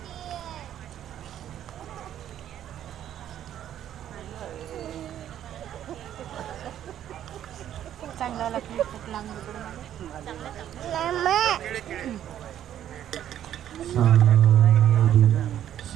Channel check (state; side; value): quieter; left; 10.9 dB